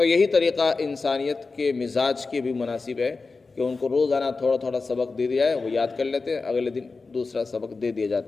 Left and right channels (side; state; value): right; quieter; 4.1 dB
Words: یہی طریقہ انسانیت کے مزاج کے بھی مناسب ہے کہ ان کو روزانہ تھوڑا تھوڑا سبق دے دیا ہے، وہ یاد کر لیتے ہیں، اگلے دن دوسرا سبق دے دیا